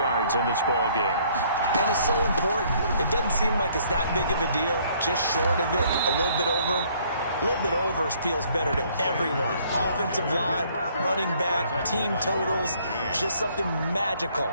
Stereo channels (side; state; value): both; inverted; correlation -0.62